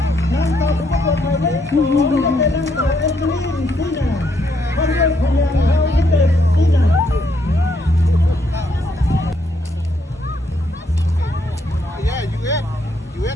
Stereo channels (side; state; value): both; normal; correlation 0.74